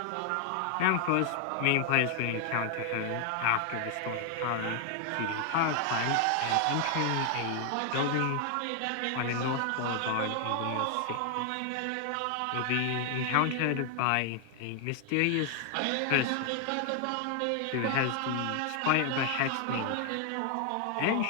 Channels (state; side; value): different; both; correlation 0.00